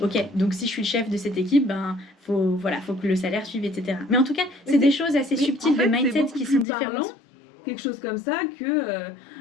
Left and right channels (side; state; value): right; drops out; at 6.7 s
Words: Ok, donc si je suis le chef de cette équipe, ben faut que le salaire suive, etc. Mais en tout cas, c'est des choses assez subtiles de mindset qui sont différentes. Quelque chose comme ça que